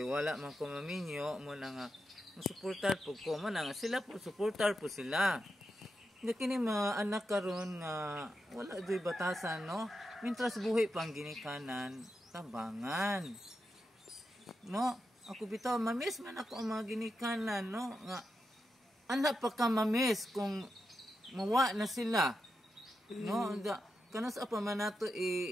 wala man ko maminyo mo na nga suportar po ko man nga sila po suportar po sila. Nga kini mga anak karon nga wala doy batasan, no? Mintras buhi pang ginikanan, tabangan, no? Ako bitaw mamis man ako ang mga ginikanan, no? Nga anak pa ka mamis kung mawa na sila, no? Kanas apa man nato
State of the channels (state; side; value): normal; both; correlation 0.87